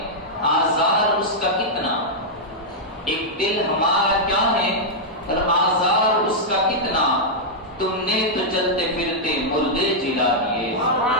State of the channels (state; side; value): normal; both; correlation -0.06